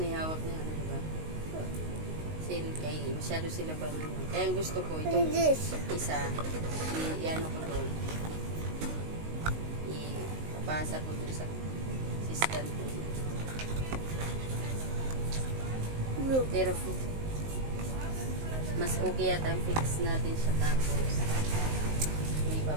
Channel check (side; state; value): left; late; 19 ms